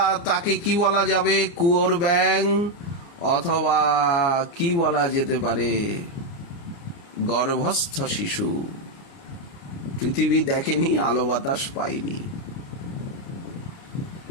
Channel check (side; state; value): right; late; 29 ms